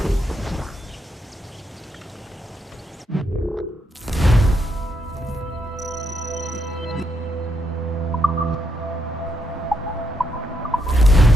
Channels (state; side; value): normal; both; correlation 0.78